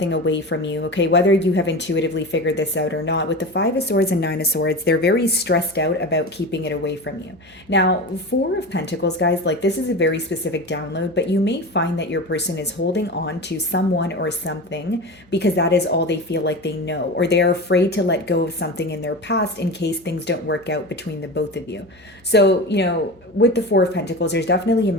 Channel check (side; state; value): left; noise; hum, 30 dB below the sound